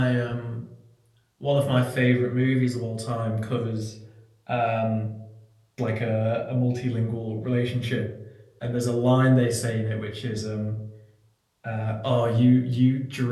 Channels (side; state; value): both; identical; correlation 1.00